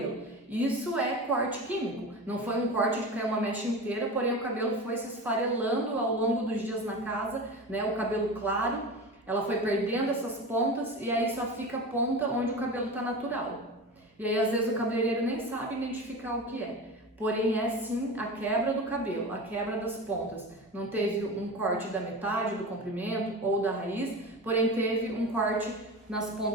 Isso é corte químico. Não foi um corte de cair uma mecha inteira, porém o cabelo foi se esfarelando ao longo dos dias na casa, o cabelo claro. ela foi perdendo essas pontas e aí só fica a ponta onde o cabelo está natural. E aí às vezes o cabeleireiro nem sabe identificar o que é. Porém é sim a quebra do cabelo, a quebra das pontas. Não teve um corte da metade do comprimento ou da raiz, porém teve um corte nas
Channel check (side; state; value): both; normal; correlation 0.28